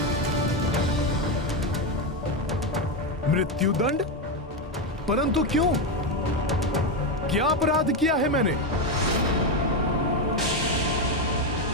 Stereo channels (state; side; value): normal; both; correlation 0.09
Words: मृत्युदंड? परंतु क्यों? क्या अपराध किया है मैंने?